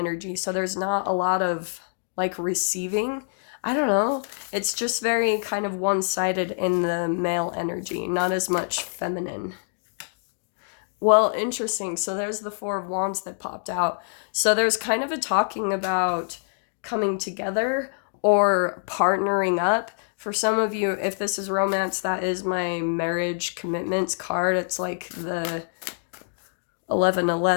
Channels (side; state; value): right; silent; digital silence